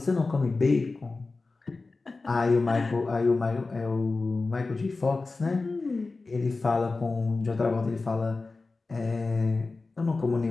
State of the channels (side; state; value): right; quieter; 3.7 dB